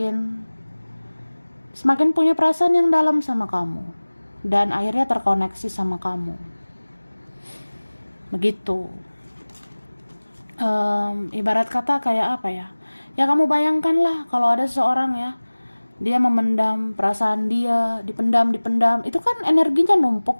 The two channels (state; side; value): inverted; both; correlation -1.00